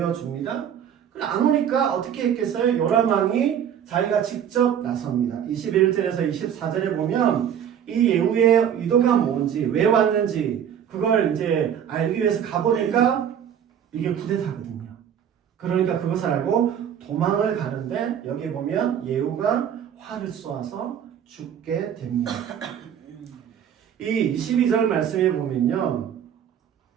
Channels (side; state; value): left; quieter; 9.0 dB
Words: 안 오니까 어떻게 했겠어요? 요람 왕이 자기가 직접 나섭니다. 21절에서 24절에 보면 이 예후의 의도가 뭔지 왜 왔는지 그걸 이제 알기 위해서 가보니까 이게 쿠데타거든요. 그러니까 그것을 알고 도망을 가는데 여기 보면 예후가 활을 쏘아서 죽게 됩니다. 이 22절 말씀에 보면요.